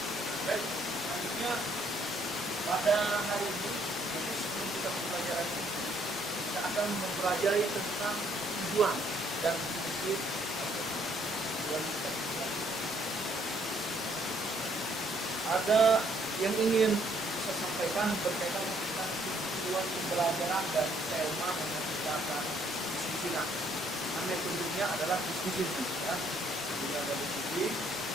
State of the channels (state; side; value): normal; both; correlation 0.67